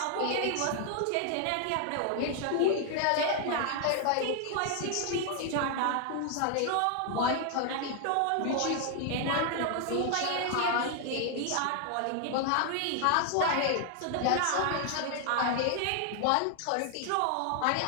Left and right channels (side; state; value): both; different; correlation 0.00